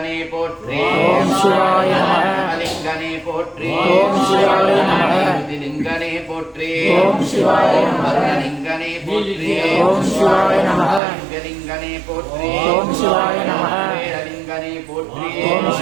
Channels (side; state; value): left; drops out; at 11.0 s